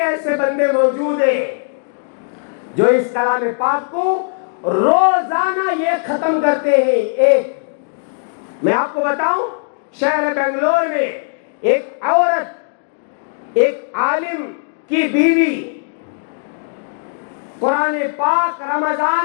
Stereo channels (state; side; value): silent; right; digital silence